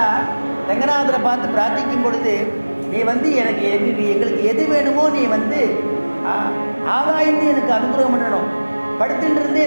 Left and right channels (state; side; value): inverted; both; correlation -1.00